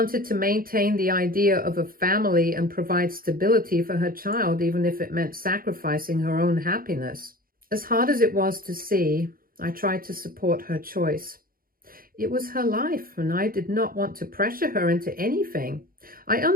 to maintain the idea of a family and provide stability for her child, even if it meant sacrificing her own happiness. As hard as it was to see, I tried to support her choice. It was her life, and I did not want to pressure her into anything. I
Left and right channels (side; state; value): left; late; 0.42 ms